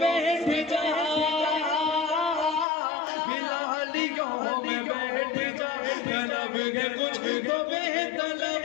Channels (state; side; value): drops out; right; at 2.7 s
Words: बैठ जा, बिलालियों में बैठ जा, तलब है कुछ तो बेतलब,